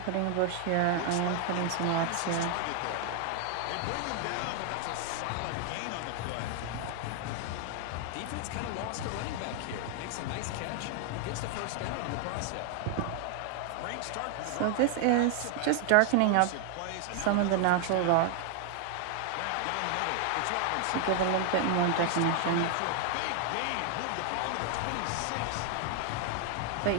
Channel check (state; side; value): different; both; correlation 0.00